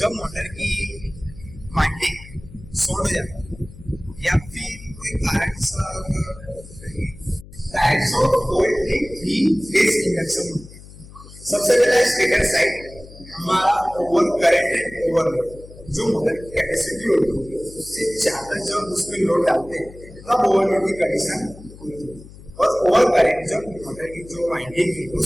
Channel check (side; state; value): left; noise; hum, 18 dB below the sound